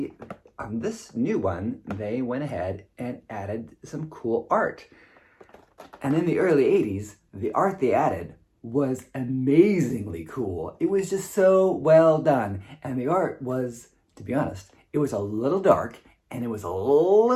on this new one, they went ahead and added some cool art. And in the early 80s, the art they added was amazingly cool. It was just so well done. And the art was, to be honest, it was a little dark and it was a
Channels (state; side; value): identical; both; correlation 1.00